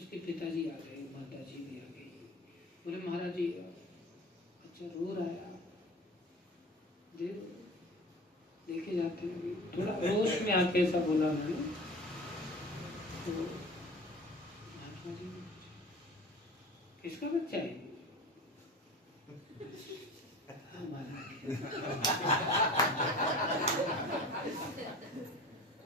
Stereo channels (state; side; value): normal; both; correlation 0.38